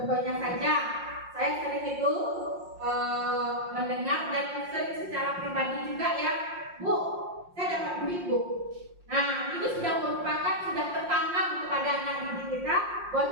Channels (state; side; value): late; left; 5.6 ms